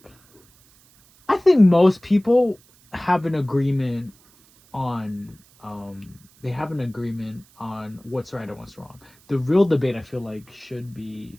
most people have an agreement on they have an agreement on what's right and what's wrong. The real debate I feel like should be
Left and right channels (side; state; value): right; noise; hiss, 29 dB below the sound